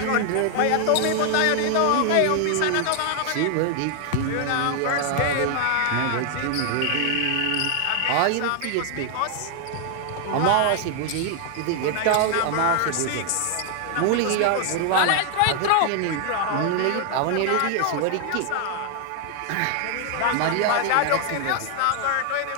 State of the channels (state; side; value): different; both; correlation 0.00